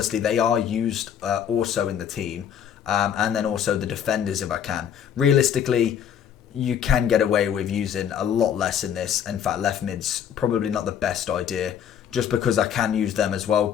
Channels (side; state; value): right; quieter; 8.8 dB